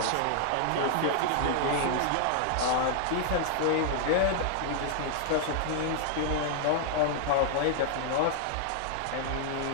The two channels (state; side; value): different; both; correlation -0.01